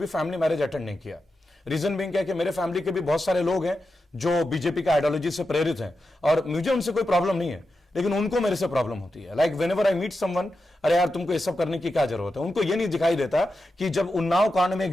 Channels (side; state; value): both; normal; correlation 0.89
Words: फैमिली मैरिज अटेंड नहीं किया। रीजन बीइंग क्या है कि मेरे फैमिली के भी बहुत सारे लोग हैं जो बीजेपी का आइडियोलॉजी से प्रेरित हैं, और मुझे उनसे कोई प्रॉब्लम नहीं है, लेकिन उनको मेरे से प्रॉब्लम होती है। Like whenever I meet someone, अरे यार तुमको ये सब करने की क्या जरूरत है? उनको ये नहीं दिखाई देता कि जब उन्नाव कांड में